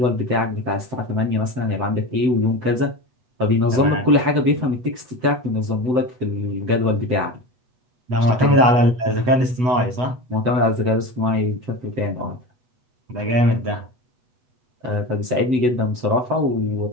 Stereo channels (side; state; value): left; late; 8.0 ms